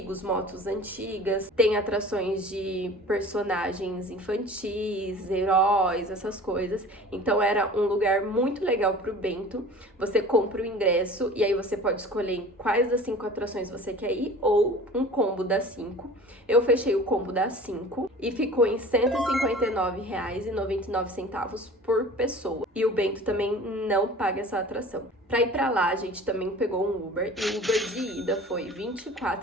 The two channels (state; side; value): normal; both; correlation 0.42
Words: motos antigas, tem atrações de personagens infantis, heróis, essas coisas. Então era um lugar muito legal pro Bento. Você compra o ingresso e aí você pode escolher quais das 5 atrações você quer ir ou um combo das 5. Eu fechei o combo das 5 e ficou em R$ 159,99 por pessoa. E o Bento também não paga essa atração. Pra ir pra lá, a gente também pegou um Uber, e o Uber de ida foi R$